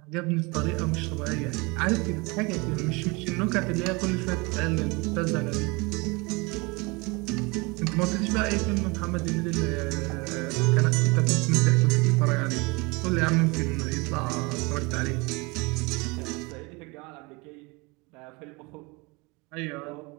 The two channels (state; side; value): quieter; left; 26.8 dB